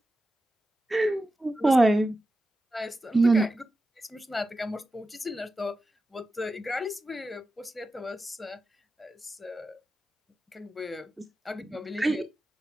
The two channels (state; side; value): normal; both; correlation 0.92